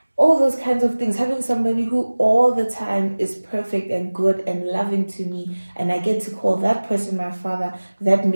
All those kinds of things, having somebody who all the time is perfect and good and loving to me, and I get to call that person my father, that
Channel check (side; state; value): both; inverted; correlation -1.00